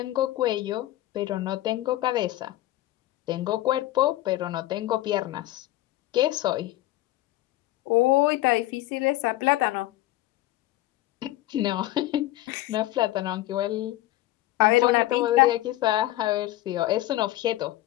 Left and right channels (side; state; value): right; quieter; 16.2 dB